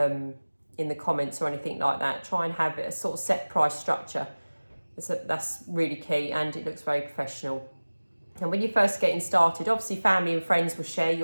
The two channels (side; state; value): both; inverted; correlation -1.00